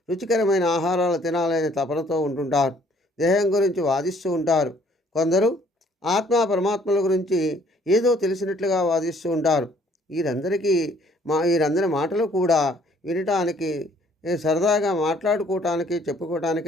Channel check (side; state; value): both; normal; correlation 0.61